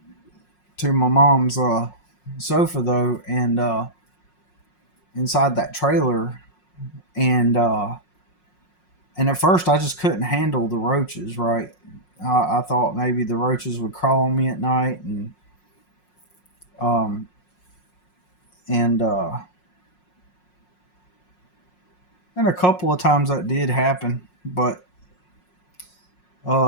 to my mom's sofa though, and inside that trailer, and and at first I just couldn't handle the roaches. Right, I thought maybe the roaches would crawl on me at night, um and and a couple of times that did happen, but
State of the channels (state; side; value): late; right; 5.5 ms